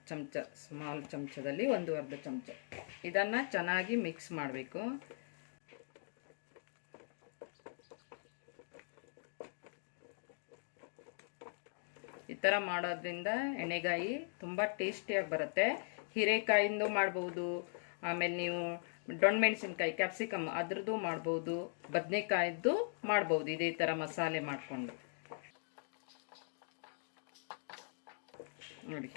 ಚಮಚ, ಸ್ಮಾಲ್ ಚಮಚದಲ್ಲಿ ಒಂದು ಅರ್ಧ ಚಮಚ. ಇದನ್ನು ಚೆನ್ನಾಗಿ ಮಿಕ್ಸ್ ಮಾಡಬೇಕು. ಈ ಥರ ಮಾಡೋದ್ರಿಂದ ಎಣ್ಣೆಗಾಯಿ ತುಂಬ ಟೇಸ್ಟಿಯಾಗಿ ಬರುತ್ತೆ. ಹೀರೆಕಾಯಿಂದ ಮಾಡ್ಬೋದು, ಆಮೇಲೆ ನೀವು ಡೊಣ್ಮೆಣಸಿನ್ಕಾಯಿ ಕ್ಯಾಪ್ಸಿಕಮ್ ಅದ್ರದ್ದು ಮಾಡ್ಬೋದು, ಬದನೆಕಾಯಿದ್ದು ಮಾಡ್ಬೋದು. ಇದೇ ಥರ ಮಸಾಲೆ ಮಾಡಿಕೊಂಡು ನೋಡಿ,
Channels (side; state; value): right; silent; digital silence